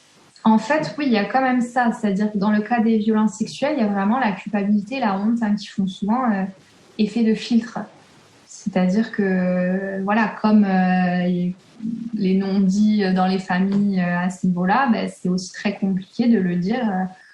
En fait, oui, il y a quand même ça. C'est-à-dire que dans le cas des violences sexuelles, il y a vraiment la culpabilité, la honte qui font souvent effet de filtre. C'est-à-dire que, voilà, comme les non-dits dans les familles à ce niveau-là, c'est aussi très compliqué de le dire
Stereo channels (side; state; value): both; identical; correlation 1.00